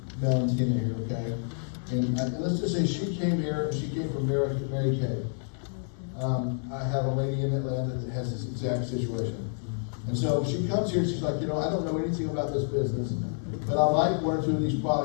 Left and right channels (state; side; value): silent; right; digital silence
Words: Valentina here, okay? And let's just say she came here, she came from Mary Kay. I have a lady in Atlanta that has this exact situation. And so she comes here, she's like, I don't know anything about this business, but I like one or two of these